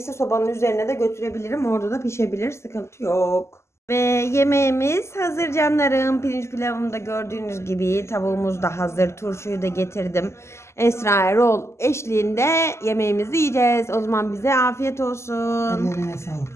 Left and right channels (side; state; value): right; late; 0.13 ms